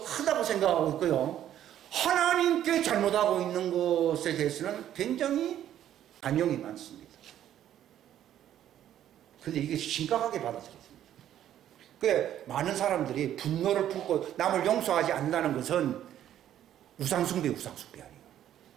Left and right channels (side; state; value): left; quieter; 11.3 dB